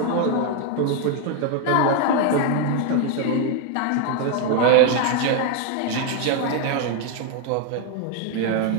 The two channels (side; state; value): both; different; correlation 0.01